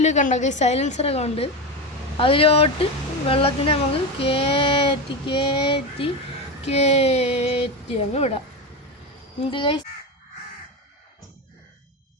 കണ്ട ഗൈസ് സൈലൻസറൊക്കെ ഉണ്ട്. അതിലോട്ട് വെള്ളത്തിനെ നമുക്ക് കയറ്റി കയറ്റി കയറ്റി അങ്ങ് വിടാം. എന്ത് ഗൈസ്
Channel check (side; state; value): both; normal; correlation 0.18